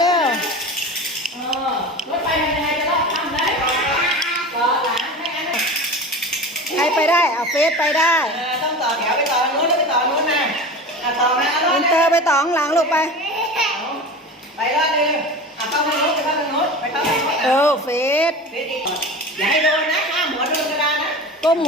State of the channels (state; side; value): normal; both; correlation 0.32